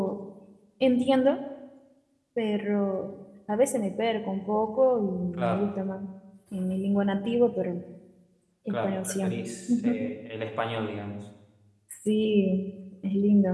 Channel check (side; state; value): both; identical; correlation 1.00